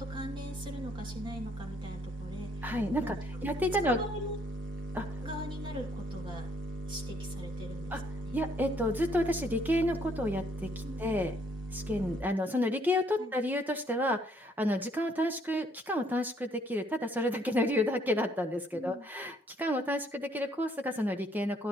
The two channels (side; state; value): both; normal; correlation 0.66